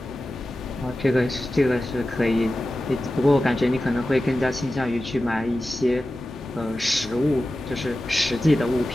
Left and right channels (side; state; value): both; normal; correlation 0.94